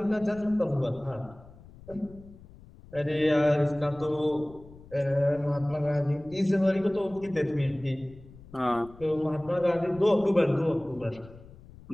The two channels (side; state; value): left; noise; rumble, 21 dB below the sound